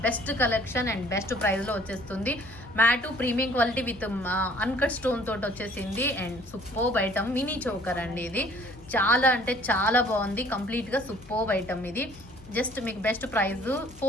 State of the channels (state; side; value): noise; left; hum, 23 dB below the sound